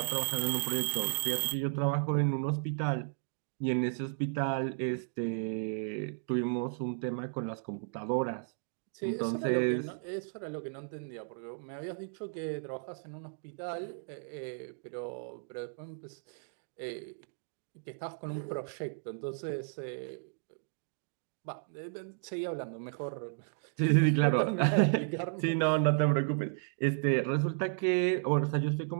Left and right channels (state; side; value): silent; left; digital silence